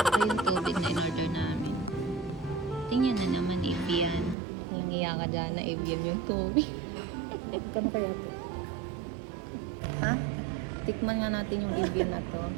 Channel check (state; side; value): drops out; left; at 4.4 s